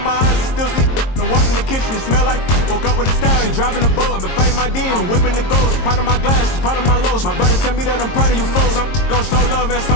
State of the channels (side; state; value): right; late; 22 ms